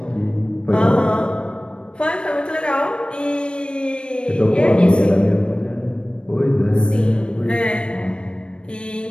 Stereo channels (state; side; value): late; right; 0.055 ms